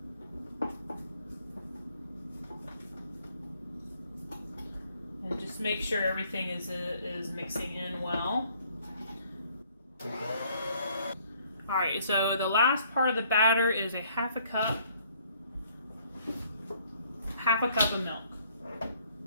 And just make sure everything is mixing in well. All right, so the last part of the batter is a half a cup of milk.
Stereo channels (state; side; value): inverted; both; correlation -0.64